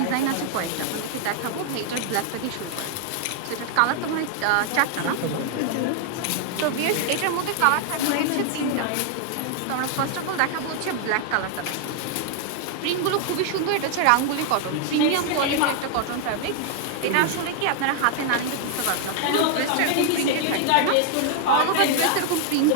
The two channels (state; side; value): different; both; correlation 0.00